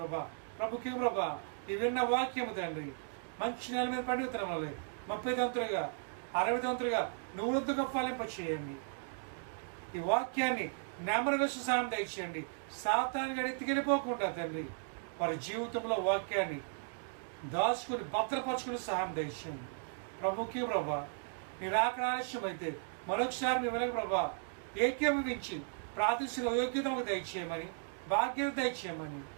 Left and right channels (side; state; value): left; silent; digital silence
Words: ప్రభుకి ప్రభా ఈ విన్న వాక్యము తండ్రి మంచి నెల మీద పండుగ వల్ల 30 దంతులుగా 60 దంతులుగా 100గా ఫలింప చేయండి. ఈ వాక్యాన్ని నెమరు వేసి సహాయం దయచేయండి. సాతాను ఎత్తికెళ్ళిపోకుండా తండ్రి వారి జీవితంలో వాక్యాన్ని దాచుకుని భద్రపరచుకుని సహాయం దయచేయండి. ప్రభుకి ప్రభా నీ రాకడ ఆలస్యం అయితే మరొకసారి మీ వెనక ప్రభా ఏకీభవించి ప్రార్థించిన యోగ్యతకు దయచేయమని, భాగ్యత దయచేయమని